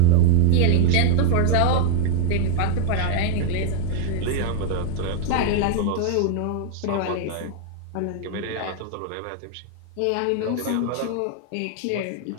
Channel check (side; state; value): both; different; correlation 0.00